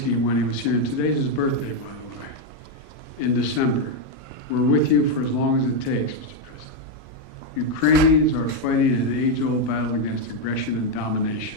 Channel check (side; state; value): right; late; 40 ms